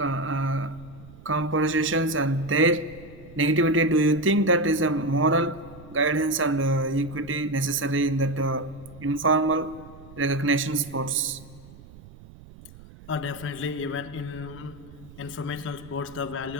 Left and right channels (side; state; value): right; noise; rumble, 20 dB below the sound